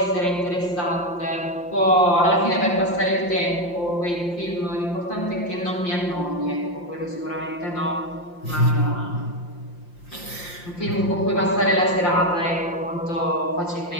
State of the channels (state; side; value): late; right; 5.7 ms